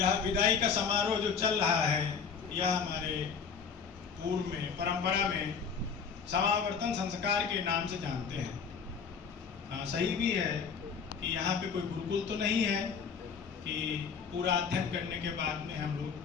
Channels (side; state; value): right; quieter; 6.2 dB